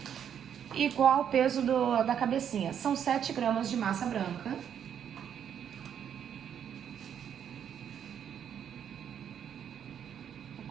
Igual o peso da cabecinha. São 7 gramas de massa branca. Eu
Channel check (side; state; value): left; quieter; 8.8 dB